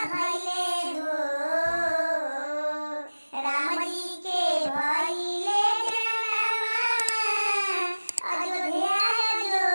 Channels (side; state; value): both; inverted; correlation -1.00